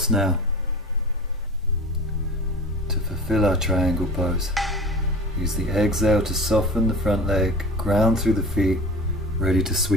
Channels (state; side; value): normal; both; correlation 0.36